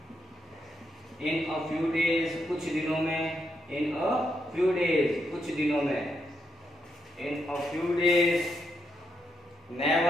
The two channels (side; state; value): both; normal; correlation 0.80